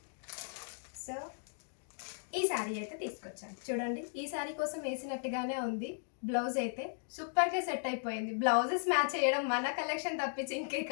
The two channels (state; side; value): silent; right; digital silence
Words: సో ఈ సారీ అయితే తీసుకొచ్చాను. చూడండి ఈ సారీ కోసం వేసినట్టుగానే ఉంది. బ్లౌజ్ అయితే సూపర్గా సెట్ అయిపోయింది. బ్లౌజెస్ మ్యాచ్ చేయడం మన కలెక్షన్ తప్పించి ఇంకే